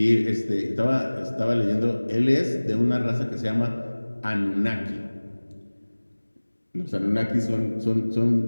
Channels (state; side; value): inverted; both; correlation -1.00